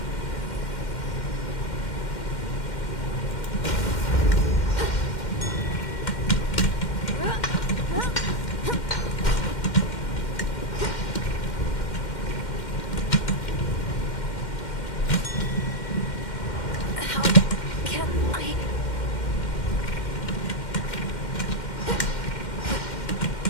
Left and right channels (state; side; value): late; right; 2.1 ms